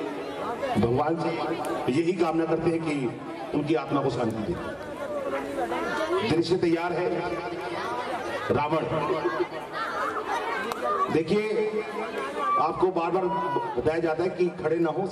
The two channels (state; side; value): identical; both; correlation 1.00